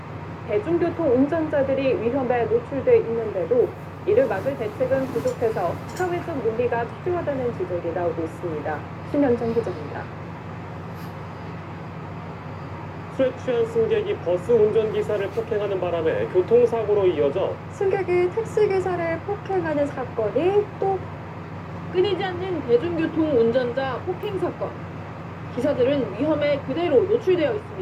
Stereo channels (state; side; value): identical; both; correlation 1.00